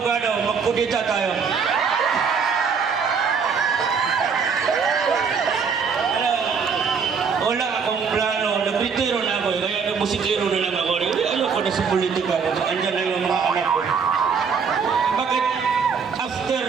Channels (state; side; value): quieter; left; 5.9 dB